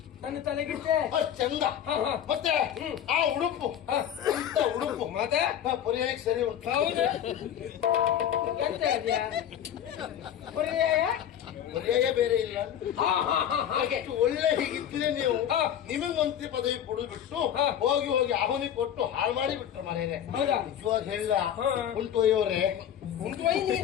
ನನ್ನ ತಲೆಗಿಟ್ಟೆ ಅಷ್ಟ್ ಚಂದ. ಮತ್ತೆ ಆ ಉಡುಪು ಅಂತ ಉಡುಪು ಮತ್ತೆ ಪರ್ಯಾಯಕ್ಕೆ ಸರಿ ಉಂಟು. ಹೌದು. ಎಂತ ಇದೆಯಾ ಪರ್ಯಾಯ? ಪರ್ಯಾಯ ಬೇರೆ ಇಲ್ಲ. ಅಷ್ಟು ಒಳ್ಳೆ ಹೀಗಿದ್ರೆ ನೀವು ನಿಮಗ್ ಮಂತ್ರಿ ಪದವಿ ಕೊಡುದು ಬಿಟ್ಟು ಹೋಗಿ ಹೋಗಿ ಆಹುನಿ ಕೊಟ್ಟು ಹಾಳು ಮಾಡಿ ಬಿಟ್ರು ಮನೇನೆ. ಹೌದಾ? ನಿಜವಾಗ ಹೇಳ ಉಂಟೊಯ್ಯವರೇ,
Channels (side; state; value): right; quieter; 9.9 dB